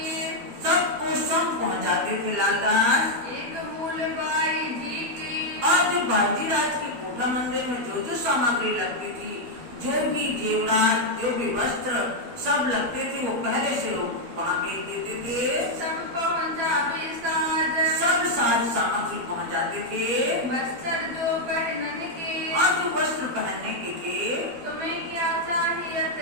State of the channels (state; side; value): late; left; 12 ms